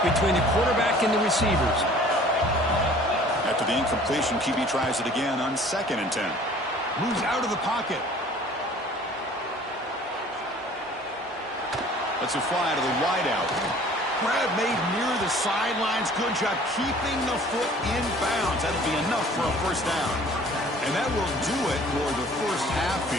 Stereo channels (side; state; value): both; normal; correlation 0.51